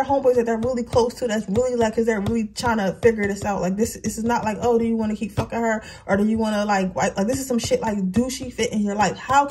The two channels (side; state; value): both; identical; correlation 1.00